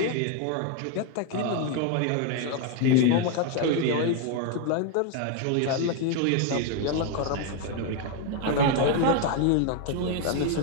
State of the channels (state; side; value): different; both; correlation 0.01